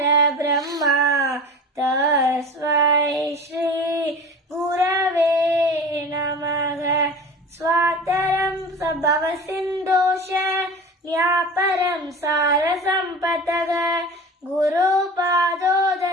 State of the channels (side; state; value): both; normal; correlation 0.35